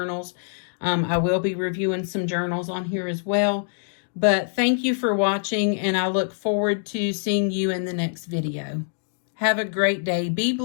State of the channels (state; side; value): silent; right; digital silence